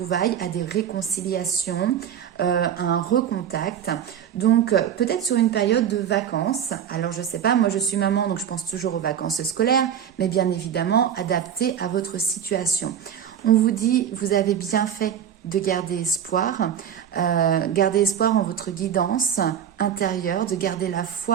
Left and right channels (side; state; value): left; quieter; 9.0 dB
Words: à des réconciliations, à un recontact. Donc peut-être sur une période de vacances. Alors je sais pas, moi je suis maman, donc je pense toujours aux vacances scolaires, mais bien évidemment adaptées à votre situation. On vous dit, vous avez bien fait de garder espoir en votre guidance intérieure, de garder la